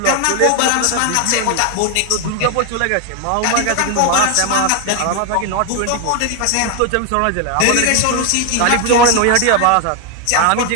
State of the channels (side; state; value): both; different; correlation 0.01